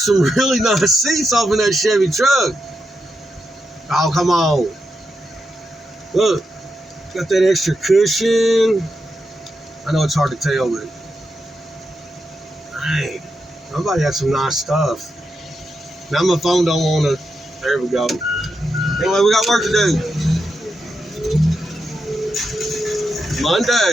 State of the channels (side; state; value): both; normal; correlation 0.86